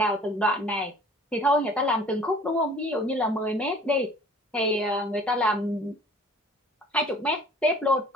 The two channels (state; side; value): normal; both; correlation 0.50